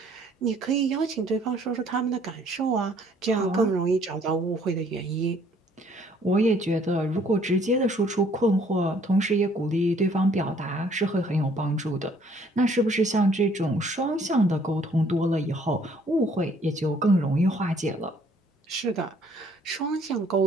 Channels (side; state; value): both; normal; correlation 0.61